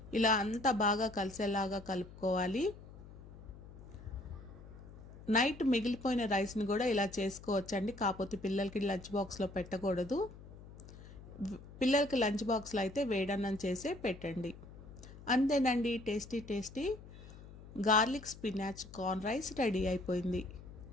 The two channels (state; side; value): noise; left; hum, 17 dB below the sound